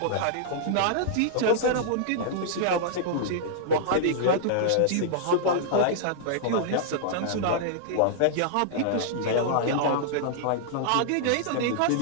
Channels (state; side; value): different; both; correlation -0.01